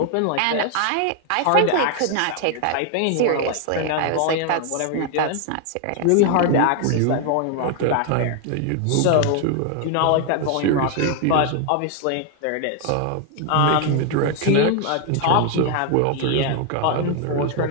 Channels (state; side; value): different; both; correlation 0.00